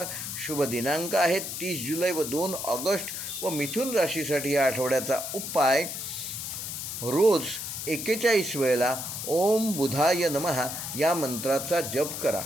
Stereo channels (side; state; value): left; noise; hiss, 6 dB below the sound